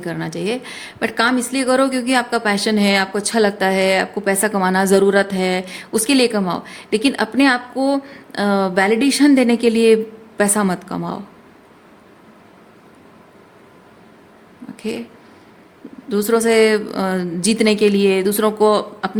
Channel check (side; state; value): both; identical; correlation 1.00